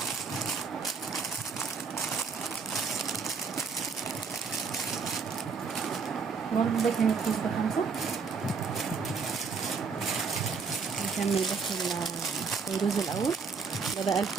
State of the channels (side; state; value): left; quieter; 5.3 dB